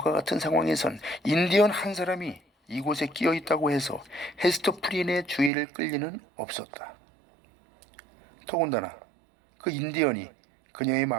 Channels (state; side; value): drops out; left; at 5.5 s